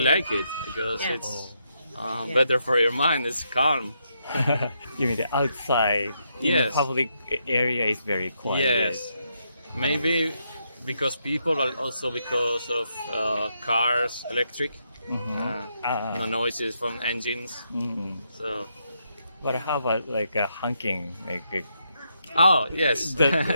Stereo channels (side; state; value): both; inverted; correlation -0.79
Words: like it because it's better for your mind. It's calm. You mean the outside? Yes. The public area is very quiet. Yes. Maybe because people, and also because of cars, electric, no noises from engines. So. But how about like honking? Oh yes, but